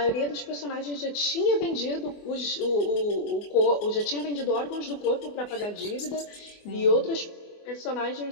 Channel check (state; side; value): late; right; 24 ms